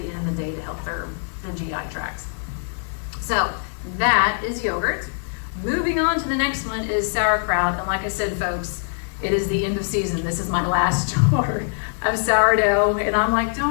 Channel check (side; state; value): right; silent; digital silence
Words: end of the day to help their GI tracts. So that is yogurt. Moving on to the next one is sauerkraut, and like I said, folks, it is the end of season. This is my last jar of sourdough, and I'm like,